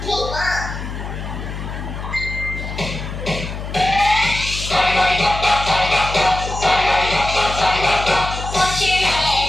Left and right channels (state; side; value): noise; left; hum, 7 dB below the sound